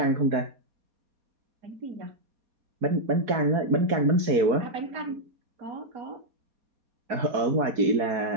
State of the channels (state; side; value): late; left; 4.7 ms